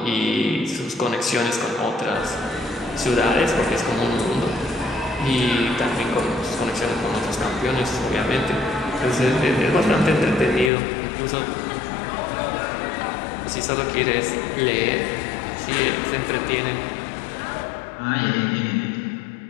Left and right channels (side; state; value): right; drops out; at 10.7 s